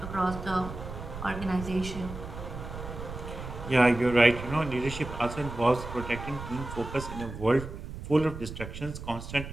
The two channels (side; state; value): right; noise; rumble, 10 dB below the sound